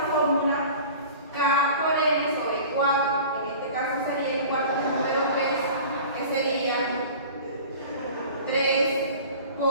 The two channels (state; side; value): inverted; both; correlation -0.41